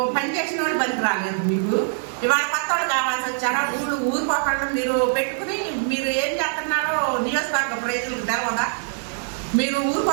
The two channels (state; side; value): silent; left; digital silence